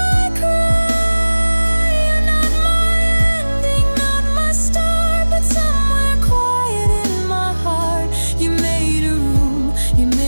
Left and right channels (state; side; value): inverted; both; correlation -1.00